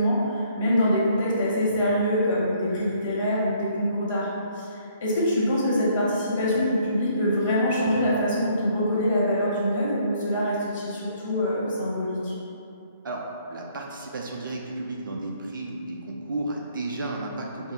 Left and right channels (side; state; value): both; inverted; correlation -0.65